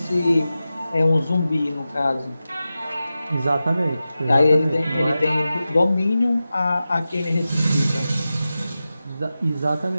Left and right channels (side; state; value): both; inverted; correlation -0.93